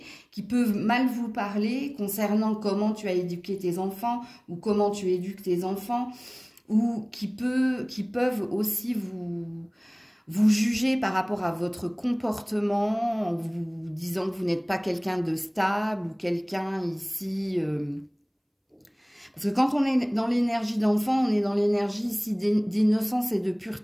qui peut mal vous parler concernant comment tu as éduqué tes enfants ou comment tu éduques tes enfants, ou qui peuvent aussi vous juger par rapport à votre comportement en vous disant que vous n'êtes pas quelqu'un de stable ou quelqu'un ici... Parce que quand on est dans l'énergie d'enfant, on est dans l'énergie ici d'innocence et de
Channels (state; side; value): identical; both; correlation 1.00